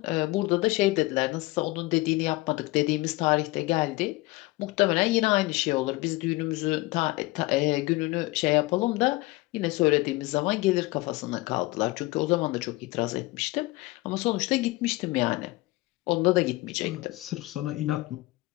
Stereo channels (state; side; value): quieter; right; 20.9 dB